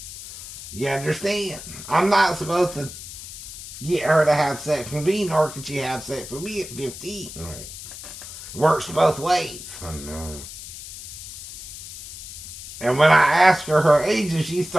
You understand? I'm not supposed to get her to have sex with me, nor can she have sex with me at 15. Right? It works both ways. I know. And when I asked her age and she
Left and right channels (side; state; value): left; noise; hiss, 12 dB below the sound